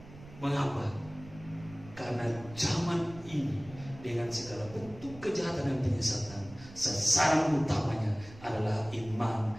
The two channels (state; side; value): noise; right; rumble, 18 dB below the sound